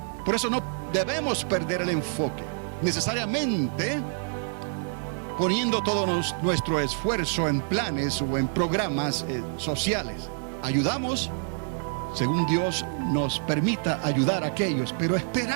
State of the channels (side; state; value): left; silent; 60 dB below the other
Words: Por eso no debemos perder el enfoque, necesariamente poniendo todo nuestro esfuerzo en planes o en programas sociales. Ayudamos según Dios nos permita ayudar a aquellos, pero